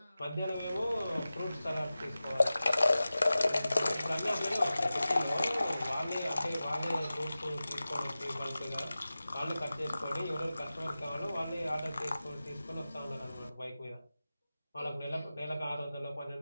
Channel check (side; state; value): both; inverted; correlation -0.96